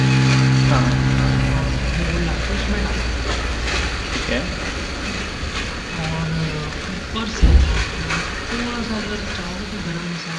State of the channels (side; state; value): both; identical; correlation 1.00